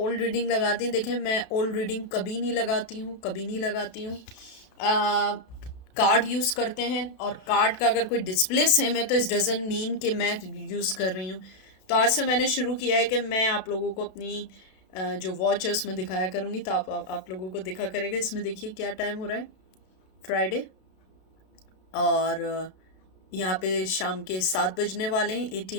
रीडिंग लगा दी। देखें, मैं ओल्ड रीडिंग कभी नहीं लगाती हूँ, कभी नहीं लगाती हूँ। कार्ड यूज़ करते हैं, और कार्ड का अगर कोई डिस्प्ले सेम है तो इस डजंट मीन कि मैं यूज़ कर रही हूँ। तो आज से मैंने शुरू किया है कि मैं आप लोगों को अपनी जो वॉच है उसमें दिखाया करूँगी, तो आप लोगों को दिखा करेगा। इसमें देखिए क्या टाइम हो रहा है, फ्राइडे। और यहाँ पे शाम के 7 बजने वाले हैं,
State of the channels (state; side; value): late; right; 32 ms